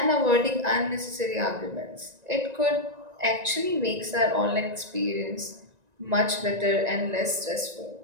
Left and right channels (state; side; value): late; left; 1.9 ms